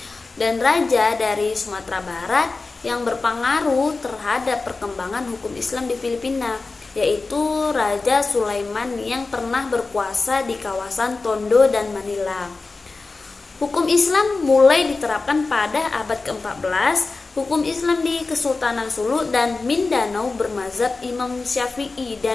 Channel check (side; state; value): right; quieter; 3.8 dB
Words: dan raja dari Sumatera Barat yang berpengaruh terhadap perkembangan hukum Islam di Filipina, yaitu Raja Sulaiman yang pernah berkuasa di kawasan Tondo dan Manila. Hukum Islam mulai diterapkan pada abad ke-14. Hukum Islam di Kesultanan Sulu dan Mindanao bermazhab Imam Syafi'i